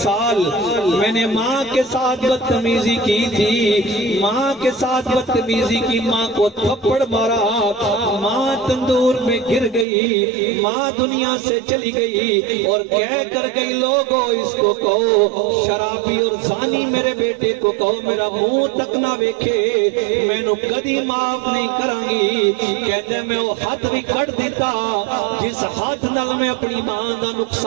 میں نے ماں کے ساتھ بدتمیزی کی تھی، ماں کے ساتھ بدتمیزی کی، ماں کو تھپڑ مارا، ماں تندور میں گر گئی، ماں دنیا سے چلی گئی اور کہہ کر گئی لوگوں اس کو کہو شرابی اور زانی میرے بیٹے کو کہو میرا منہ تک نہ ویکھے، میں نو کدی معاف نہیں کرانگی۔ کہتے میں وہ حد بھی کٹ دیتا جس حد نال میں اپنی ماں دا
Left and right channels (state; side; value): drops out; left; at 9.9 s